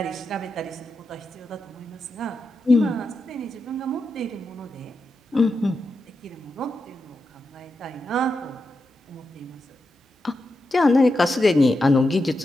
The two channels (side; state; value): both; normal; correlation 0.87